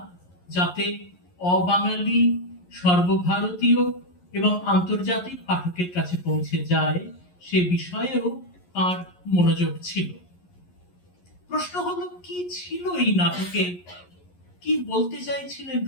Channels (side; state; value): right; late; 11 ms